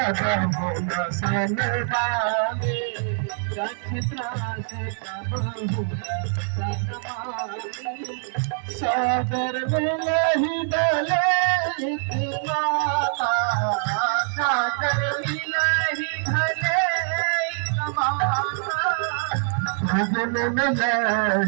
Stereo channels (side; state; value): left; silent; 62 dB below the other